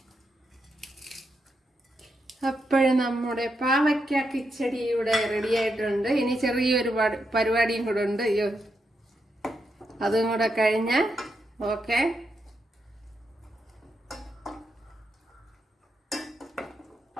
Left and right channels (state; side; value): normal; both; correlation 0.83